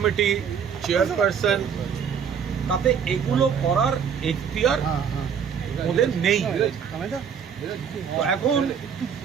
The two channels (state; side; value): quieter; left; 7.3 dB